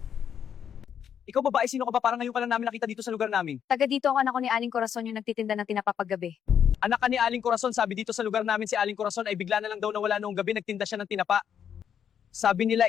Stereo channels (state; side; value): quieter; right; 8.4 dB